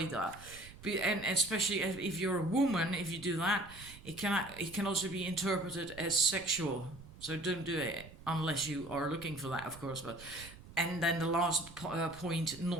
And especially if you're a woman, if you do that, it can also be interpreted as sexual. So don't do it unless you are looking for that, of course. And then the last point,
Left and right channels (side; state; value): right; noise; rumble, 18 dB below the sound